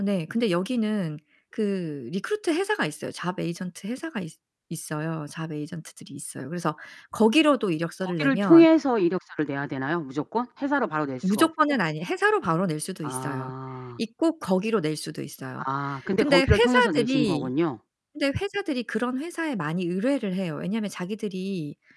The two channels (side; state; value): both; identical; correlation 1.00